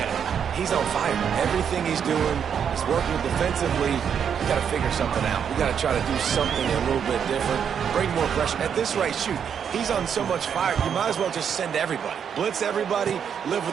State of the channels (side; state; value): left; quieter; 7.8 dB